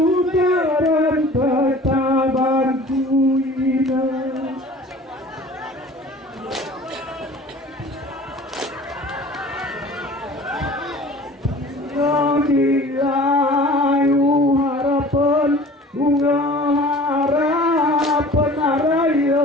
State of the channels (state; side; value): normal; both; correlation 0.45